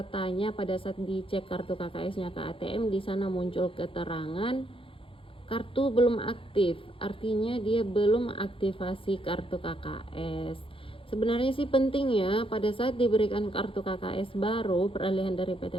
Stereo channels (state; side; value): late; right; 0.26 ms